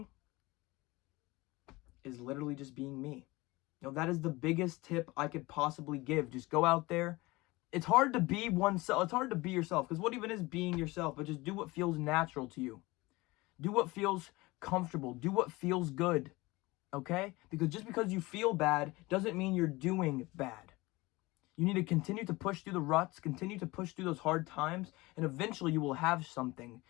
is literally just being me. That is the biggest tip I could possibly give. Just go out there It's hard to be oneself. It's hard to be yourself, because what even is being yourself? But just do what feels natural to you. Do what feels comfortable. Do what feels good. Okay? Because just because you feel bad doesn't mean you're doing bad. You need to continue to push through the ruts, continue to push through those hard times, and eventually you will have something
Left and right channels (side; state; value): right; quieter; 21.8 dB